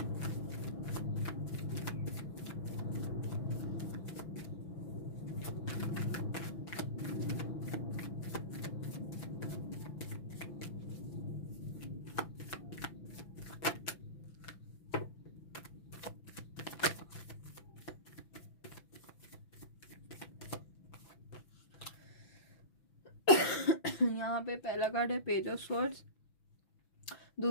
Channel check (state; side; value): late; right; 6.1 ms